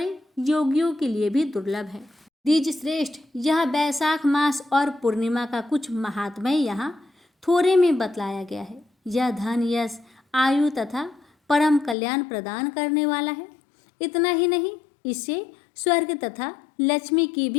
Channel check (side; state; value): right; drops out; at 12.0 s